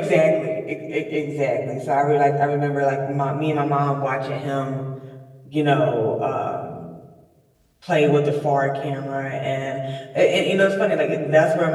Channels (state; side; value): identical; both; correlation 1.00